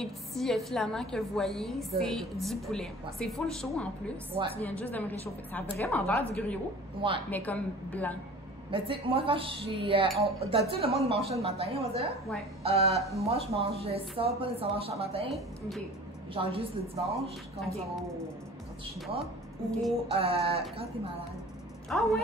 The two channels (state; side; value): normal; both; correlation 0.43